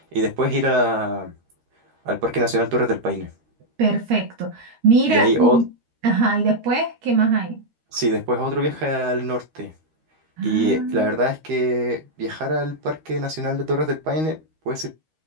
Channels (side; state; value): left; late; 13 ms